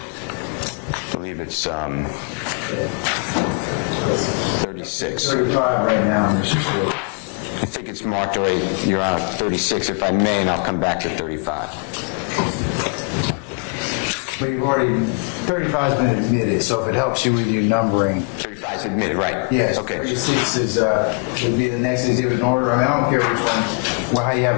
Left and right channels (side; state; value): right; quieter; 36.6 dB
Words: I believe it's 36. 35 right now, Mr. Stewart. I think it's marked already, Your Honor, 36, if I may, and I'll come back to 35. But you've already, 35's been admitted, so if it helps you with your numbering. 35 is admitted, right? Yes, Okay. 36 is, would be the next exhibit in order. I mean, I don't care which one, well, how you